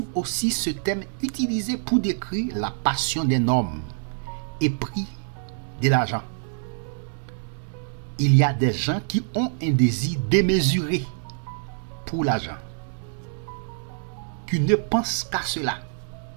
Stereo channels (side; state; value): left; silent; 61 dB below the other